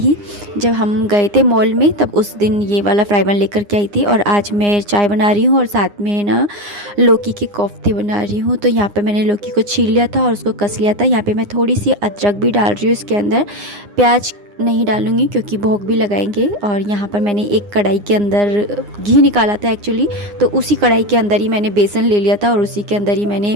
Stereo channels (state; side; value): late; left; 9.8 ms